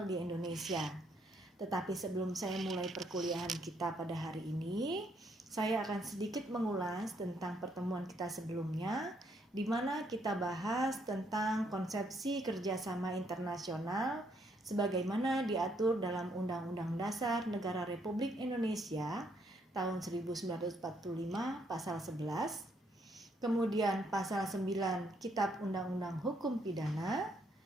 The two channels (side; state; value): both; normal; correlation 0.72